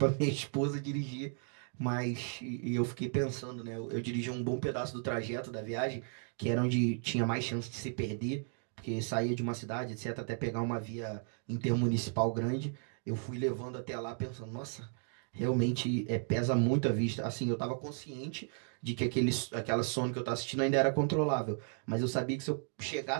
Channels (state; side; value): silent; left; 55 dB below the other